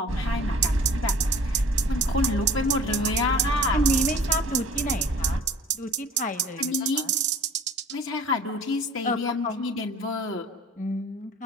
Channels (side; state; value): both; normal; correlation 0.47